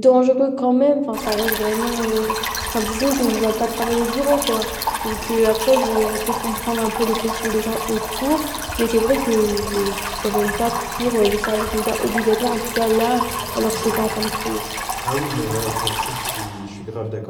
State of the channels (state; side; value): identical; both; correlation 1.00